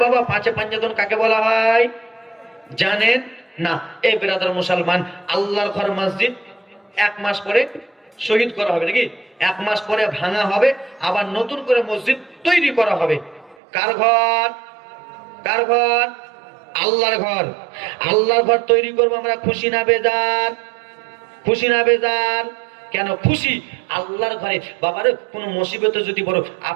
বাবা 5 পাঞ্জাতন কাকে বলা হয়? জানেন? না, এই ব্রাদার মুসলমান, আল্লাহর ঘর মসজিদ 1 মাস পরে শহীদ করা হবে নাকি, 1 মাস পরে ভাঙা হবে, আবার নতুন করে মসজিদ তৈরি করা হবে। কার ঘর? কার ঘর? আল্লাহর ঘর। আল্লাহর ঘর তৈরি করবো আমরা, খুশি না বেজার? খুশি না বেজার? কেন খুশি? আল্লাহর ঘরে বাবারে কোনো মুসিবতে যদি বড়,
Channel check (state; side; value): drops out; left; at 13.6 s